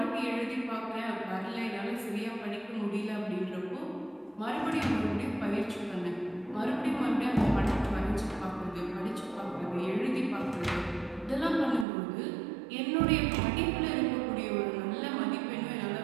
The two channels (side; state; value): left; drops out; at 11.9 s